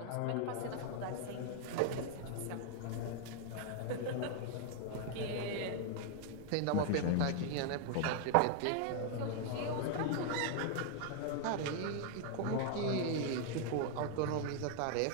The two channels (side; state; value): both; different; correlation 0.00